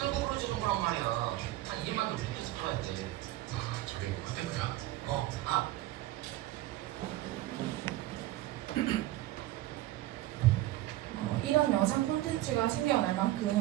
부러지는 거란 말이야. 한 2만도 비켜서 팔아야 돼. 아 저기 뭐 그때 그야? 이런 영상 콘텐츠가 생겨날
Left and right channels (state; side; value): quieter; left; 15.7 dB